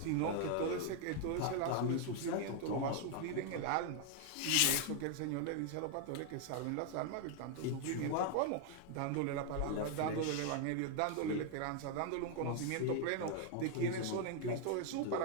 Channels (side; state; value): both; different; correlation 0.00